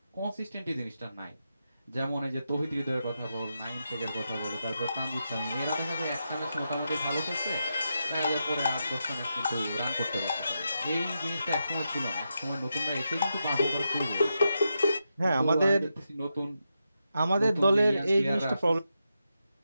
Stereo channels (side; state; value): both; inverted; correlation -0.86